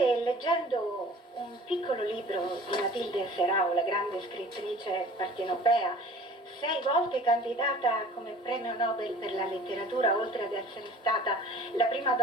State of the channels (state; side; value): normal; both; correlation 0.46